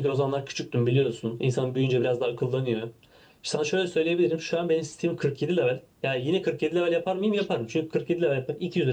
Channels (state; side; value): identical; both; correlation 1.00